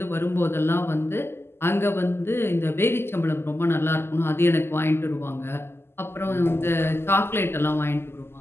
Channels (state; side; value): late; right; 0.12 ms